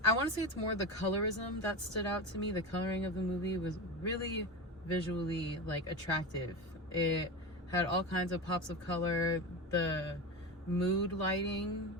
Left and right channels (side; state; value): both; normal; correlation 0.23